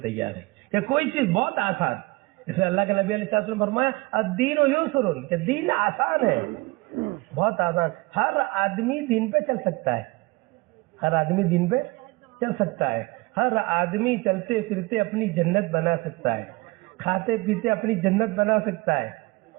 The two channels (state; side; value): quieter; left; 23.3 dB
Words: تیاری کہ کوئی چیز بہت آسان. اس میں اللہ کے نبی علیہ السلام نے فرمایا الدین یسر کہ دین آسان ہے, بہت آسان. ہر آدمی دین پہ چل سکتا ہے, ہر آدمی دین پہ چل سکتا ہے, ہر آدمی چلتے پھرتے اپنی جنت بنا سکتا ہے, کھاتے پیتے اپنی جنت بنا سکتا ہے.